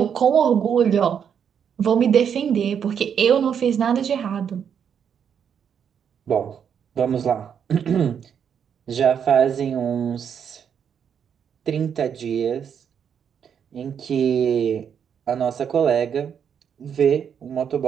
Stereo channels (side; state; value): left; quieter; 7.8 dB